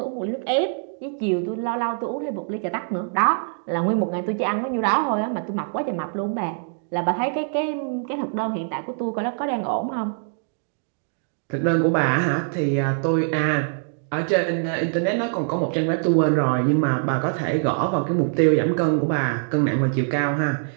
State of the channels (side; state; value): left; silent; digital silence